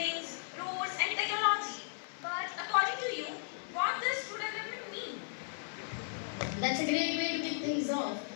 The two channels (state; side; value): silent; right; 54 dB below the other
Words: roads, and technology. But according to you, what does true development mean? That's a great way to kick things off.